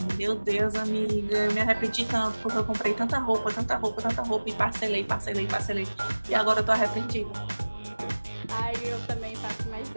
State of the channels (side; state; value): both; inverted; correlation -1.00